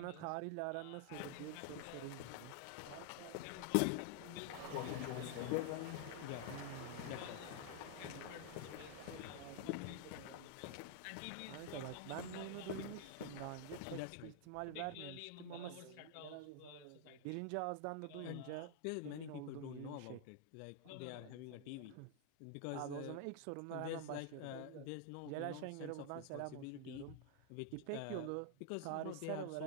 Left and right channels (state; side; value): different; both; correlation 0.00